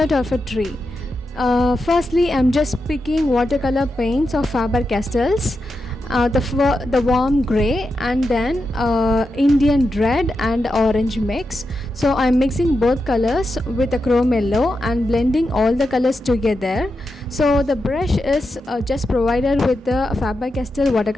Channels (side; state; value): both; normal; correlation 0.88